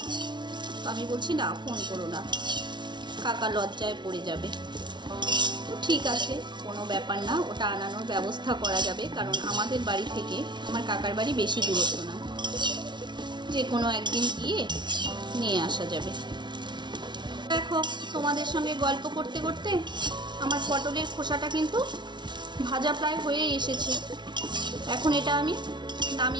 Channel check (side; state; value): left; late; 0.22 ms